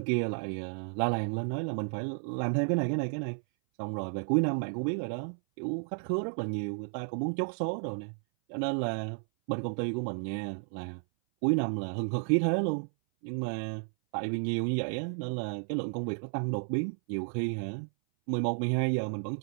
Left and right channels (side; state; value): left; silent; 56 dB below the other